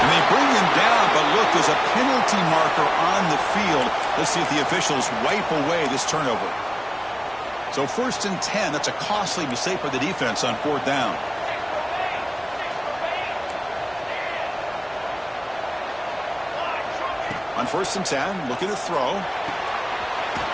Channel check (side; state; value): both; identical; correlation 1.00